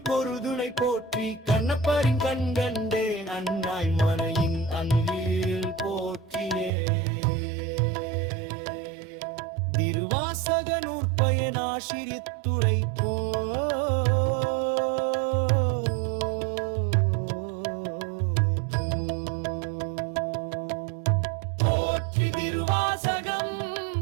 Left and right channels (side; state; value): left; drops out; at 6.7 s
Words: கொருதுணை போற்றி, கண்ணப்பரின் கண்கண்டே அண்ணாய் மனையின் அன்பில் போற்றியே, திருவாசக நூற்பயன் ஆசிரியத்துறை போற்றி திருவாசகம்